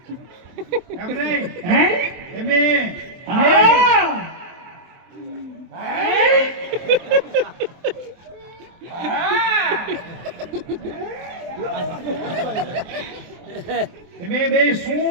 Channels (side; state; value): left; late; 23 ms